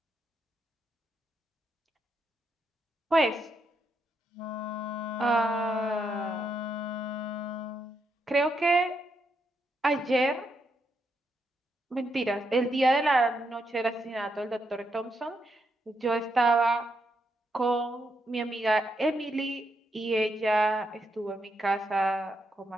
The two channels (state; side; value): normal; both; correlation 0.80